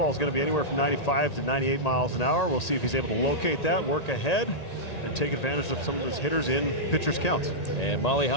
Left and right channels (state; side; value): late; right; 1.8 ms